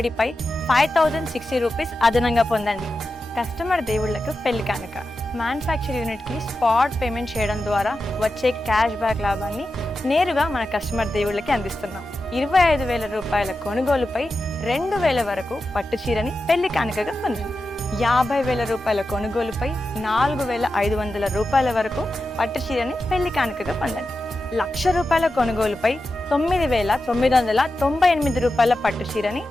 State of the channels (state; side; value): normal; both; correlation 0.91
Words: 5060 రూపీస్ అదనంగా పొందండి. కస్టమర్ దేవుళ్లకు పెళ్లి కానుక. మ్యానుఫ్యాక్చర్ యూనిట్కి స్పాట్ పేమెంట్ చేయడం ద్వారా వచ్చే క్యాష్ బ్యాక్ లాభాన్ని నేరుగా మన కస్టమర్ దేవుళ్ళకి అందిస్తున్నాం. 25,000 రూపాయల కొనుగోలుపై 2,000 వరకు పట్టు చీరని పెళ్లి కానుకగా పొందండి. 50,000 రూపాయల కొనుగోలుపై 4,500 రూపాయల వరకు పట్టు చీరని పెళ్లి కానుకగా పొందండి. 1,00,000 రూపాయల కొనుగోలుపై 9,998 రూపాయల పట్టు చీరని